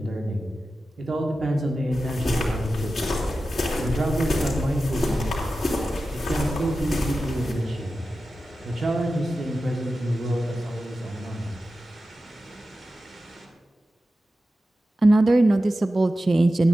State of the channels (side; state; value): both; normal; correlation 0.93